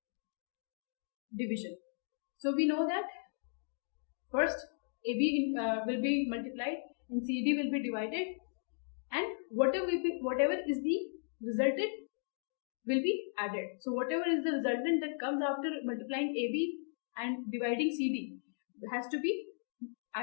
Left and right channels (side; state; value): right; silent; digital silence